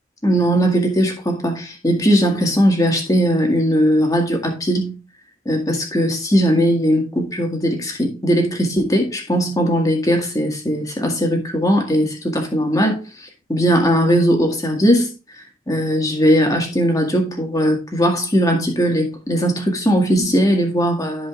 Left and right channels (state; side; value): normal; both; correlation 0.73